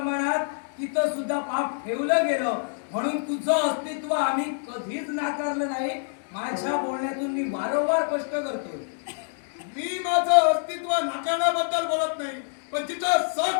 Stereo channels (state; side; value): silent; right; digital silence